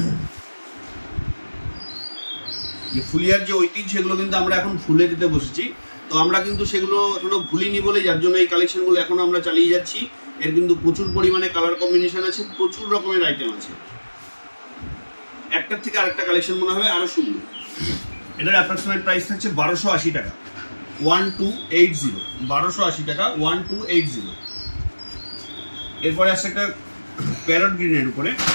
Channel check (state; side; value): inverted; both; correlation -1.00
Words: যে ফুলিয়ার যে ঐতিহ্য, সেগুলো কিন্তু আমরা এখন ভুলে দিতে বসেছি, তো আমরা কিন্তু সেগুলো এখনো ভুলিনি বলে যার জন্য এই কালেকশনগুলো এখনো আমরা চালিয়ে যাচ্ছি। এর কিন্তু প্রচুর পরিমাণে কালার কম্বিনেশন আছে, প্রচুর রকমের আইটেম আছে। একটার থেকে আরেকটা কালেকশন মনে হবে আরো সুন্দর। এটার অ্যাপ্রক্সিমেট প্রাইস থাকছে 1280 টাকা, 1280, 1280 টাকা, 1280। এরপরে আসছে একটা প্যারট গ্রিনের উপরে,